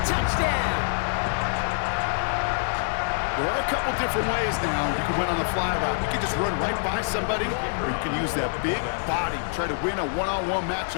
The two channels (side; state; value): right; silent; 61 dB below the other